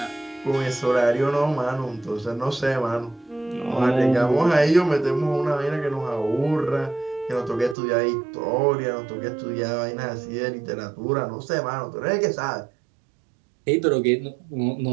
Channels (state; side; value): drops out; left; at 7.8 s